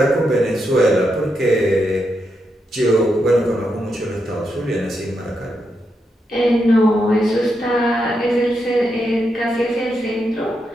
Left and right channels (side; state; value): both; normal; correlation 0.83